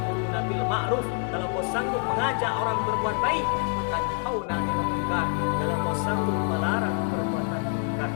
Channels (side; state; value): right; quieter; 38.8 dB